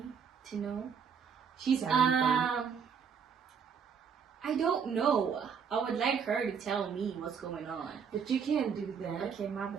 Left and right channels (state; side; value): quieter; left; 6.8 dB